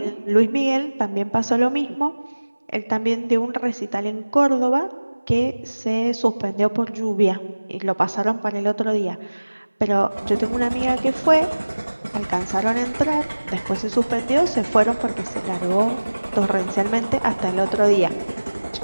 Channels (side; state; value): both; inverted; correlation -1.00